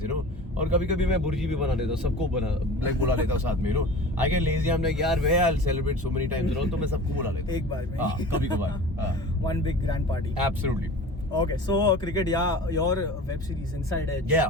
और कभी-कभी मैं बुर्जी भी बना लेता हूँ, सबको बुला लेता हूँ साथ में, I get lazy. I'm like, यार where I'll celebrate so many times, तो मैं सबको बुला लेता हूँ. एक बार में. कभी-कभार. One big grand party. Absolutely. Okay, so cricket, yeah, your web series Inside Edge.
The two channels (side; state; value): both; normal; correlation 0.38